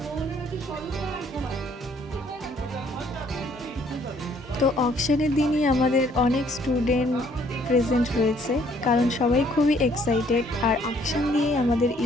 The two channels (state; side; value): normal; both; correlation 0.63